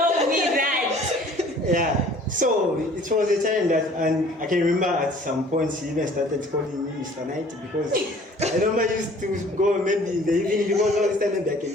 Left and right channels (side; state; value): both; normal; correlation 0.52